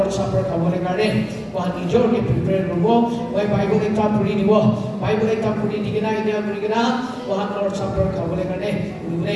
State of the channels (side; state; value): both; identical; correlation 1.00